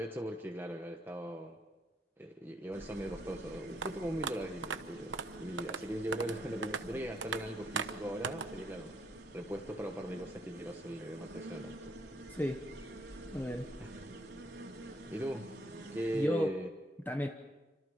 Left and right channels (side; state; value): both; normal; correlation 0.70